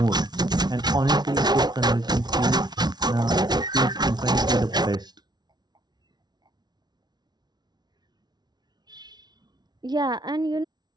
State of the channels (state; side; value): late; left; 0.20 ms